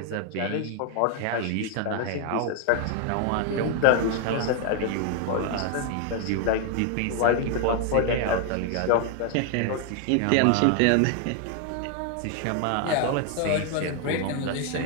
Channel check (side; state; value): both; different; correlation 0.00